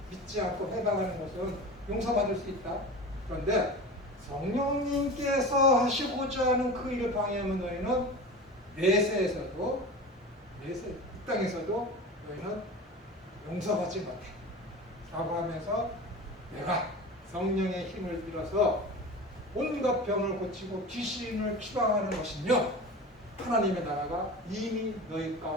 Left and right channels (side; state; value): both; normal; correlation 0.32